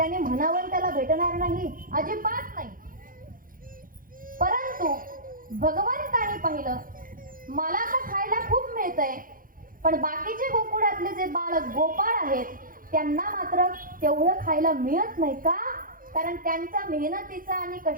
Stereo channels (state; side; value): late; left; 0.40 ms